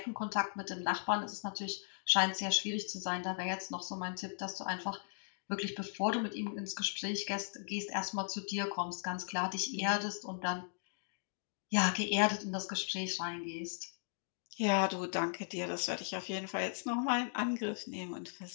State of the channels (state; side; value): silent; right; digital silence